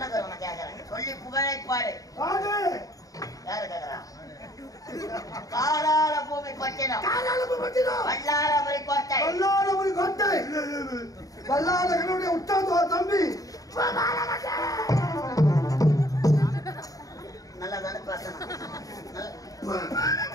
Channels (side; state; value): right; late; 0.17 ms